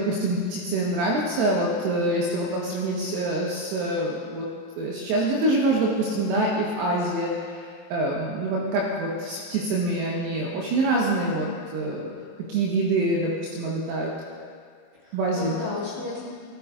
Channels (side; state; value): left; late; 23 ms